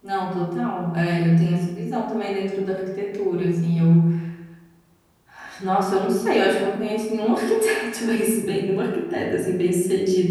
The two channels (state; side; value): identical; both; correlation 1.00